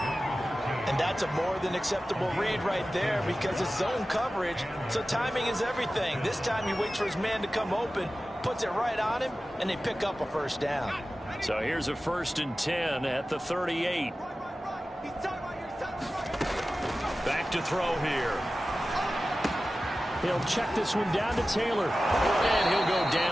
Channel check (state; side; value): normal; both; correlation 0.95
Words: And that's a more than acceptable read right there because it's zone coverage, so timing is everything. This time he waits for his man to come open, puts it right on him, and they pick up a first down. So here's a 1st and 10 at the 38. Back to throw here. He'll check this one down to Taylor. And he'll go